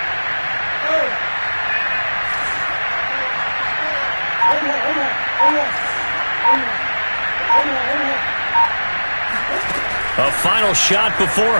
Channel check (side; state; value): both; inverted; correlation -1.00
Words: A final shot before